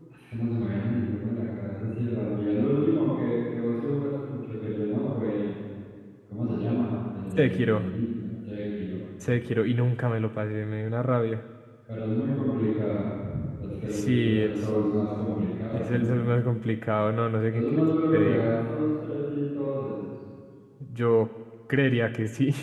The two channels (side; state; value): both; identical; correlation 1.00